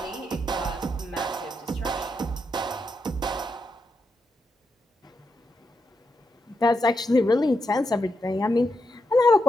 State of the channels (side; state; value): both; normal; correlation 0.84